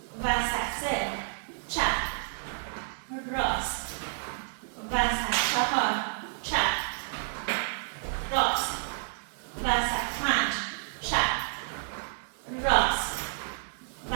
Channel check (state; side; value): silent; left; digital silence